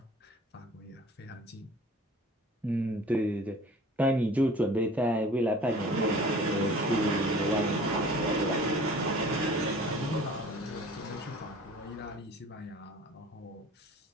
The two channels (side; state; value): both; normal; correlation 0.47